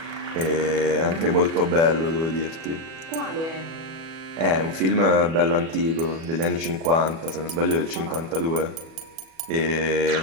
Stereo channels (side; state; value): left; late; 37 ms